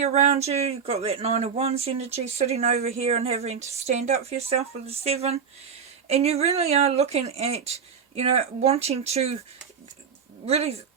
around you. You've got that 9 of Wands energy sitting over here and having to stand up for yourself with the 7. And you really are looking at, you know, wanting to really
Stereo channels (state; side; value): quieter; left; 6.6 dB